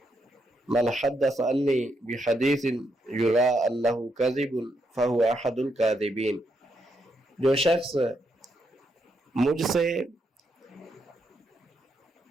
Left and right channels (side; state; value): both; normal; correlation 0.79